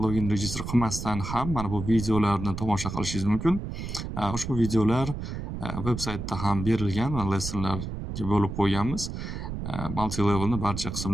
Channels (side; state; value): right; noise; rumble, 6 dB below the sound